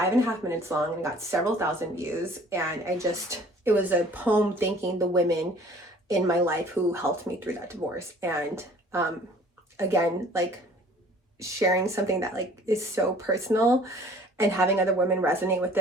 minutes long and got several thousand views. And it was a poem thanking the women in my life who helped me through that divorce. And again, like sharing something that like is so personal and having other women resonate with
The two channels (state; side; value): normal; both; correlation 0.52